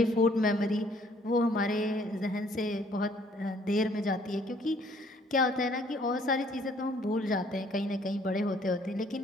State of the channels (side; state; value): both; normal; correlation 0.62